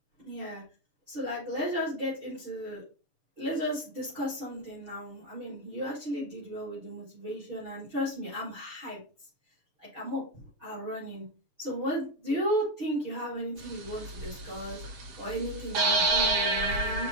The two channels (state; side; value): late; left; 6.8 ms